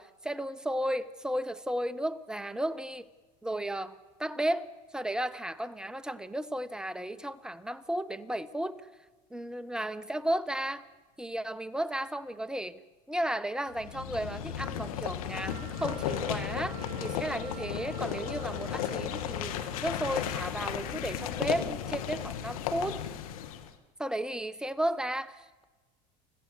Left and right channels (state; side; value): normal; both; correlation 0.69